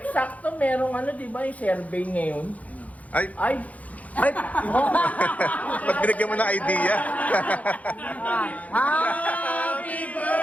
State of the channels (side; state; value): right; late; 0.071 ms